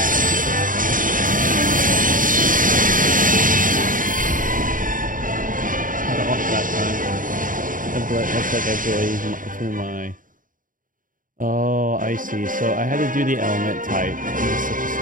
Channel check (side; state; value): left; late; 0.39 ms